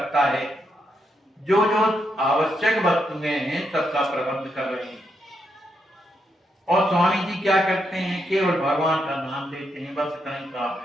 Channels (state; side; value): normal; both; correlation 0.80